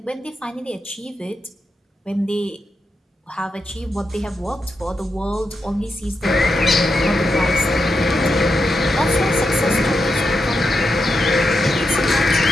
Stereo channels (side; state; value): both; normal; correlation 0.86